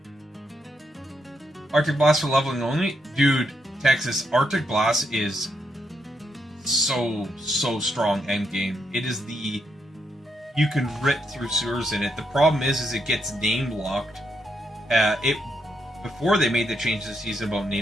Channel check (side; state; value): both; normal; correlation 0.79